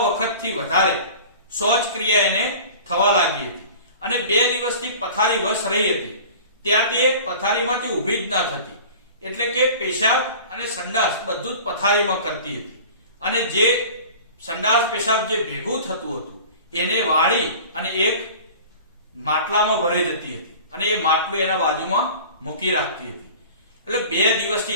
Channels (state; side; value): inverted; both; correlation -0.41